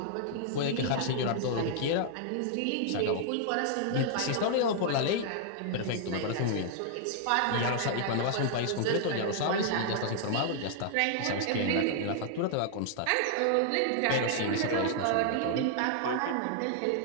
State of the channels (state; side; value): different; both; correlation -0.01